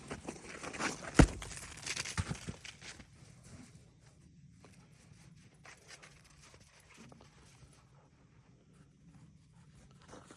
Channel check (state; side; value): identical; both; correlation 1.00